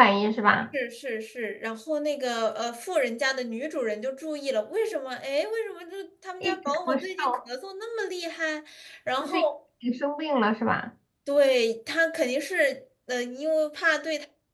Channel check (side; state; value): both; identical; correlation 1.00